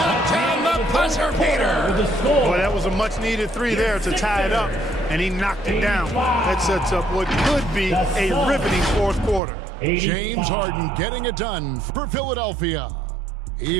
down the buzzer beater. Boy, that was a much-needed 3 there to tie it up, and he knocked it down. That sets up what could be a riveting 4th quarter. James Harden getting it done for Philadelphia.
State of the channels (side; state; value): left; drops out; at 9.4 s